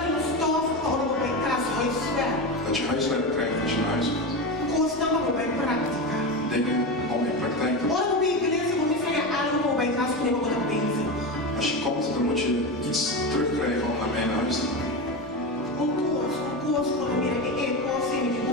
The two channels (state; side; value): normal; both; correlation 0.19